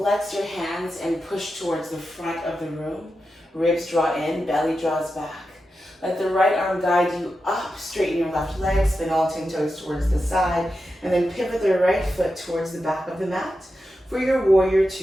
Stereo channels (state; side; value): normal; both; correlation 0.90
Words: your hands and push towards the front of the room. Ribs draw in, belly draws back. Let the right arm guide you up, straighten your left leg, spin all 10 toes towards the side, and then pivot the right foot towards the back of the mat. For your warrior